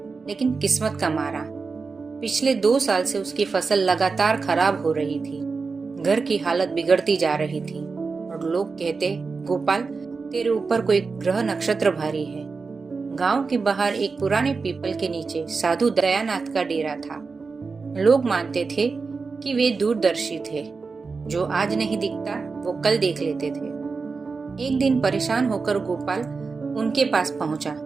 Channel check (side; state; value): left; quieter; 4.5 dB